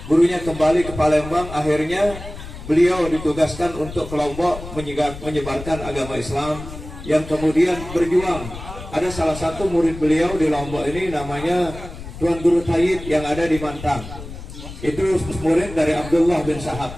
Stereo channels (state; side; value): noise; left; rumble, 12 dB below the sound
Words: gurunya kembali ke Palembang. Akhirnya beliau ditugaskan untuk ke Lombok menyebarkan agama Islam, yang kemudian berjuang. Ada salah satu murid beliau di Lombok ini namanya Tuan Guru Tayyib yang ada di Mantang. Itu murid dari Abdullah bin